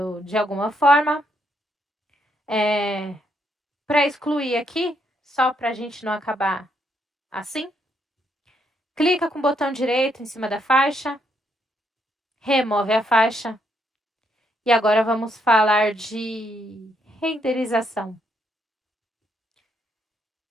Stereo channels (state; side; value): normal; both; correlation 0.75